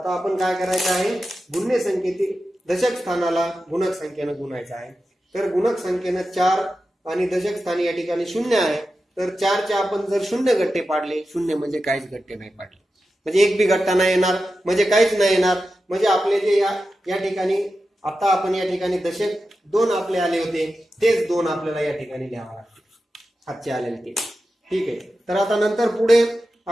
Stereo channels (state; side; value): normal; both; correlation 0.91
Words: आपण काय करायचं आहे, गुण्य संख्येतील दशक स्थानाला गुणक संख्येने गुणायचं आहे। तर गुणक संख्येने 4 आणि दशक स्थानी या ठिकाणी 0 आहे। तर 4 चे आपण जर 0 गट्टे पाडले, 0 म्हणजे काहीच गट्टे नाही पाडले, म्हणजे एक बी गट्टा नाही येणार, म्हणजे काहीच नाही येणार। म्हणजे आपले जे या ठिकाणी आता आपण या ठिकाणी दशक 2 आपले आले होते तेच 2 आपल्याला या ठिकाणी लिहावं लागते, हातचे आलेले ते। ठीक आहे। तर आता नंतर पुढे